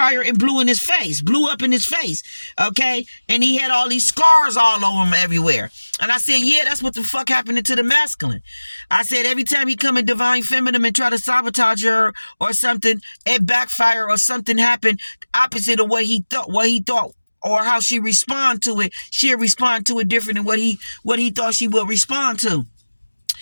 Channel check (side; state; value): both; inverted; correlation -1.00